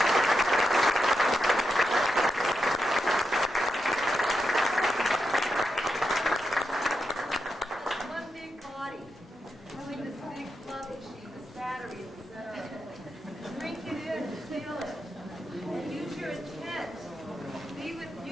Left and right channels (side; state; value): both; normal; correlation 0.86